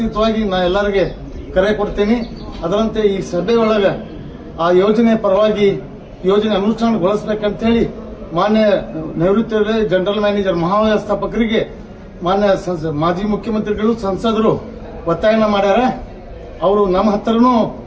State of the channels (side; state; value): both; identical; correlation 1.00